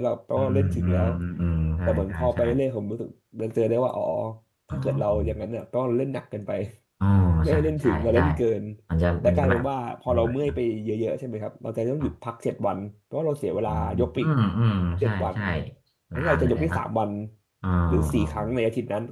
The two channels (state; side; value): identical; both; correlation 1.00